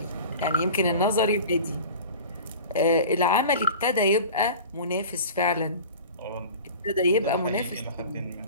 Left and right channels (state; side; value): inverted; both; correlation -0.37